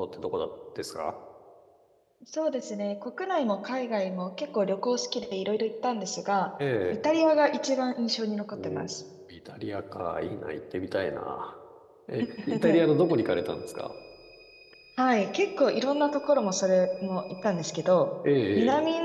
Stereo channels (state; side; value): identical; both; correlation 1.00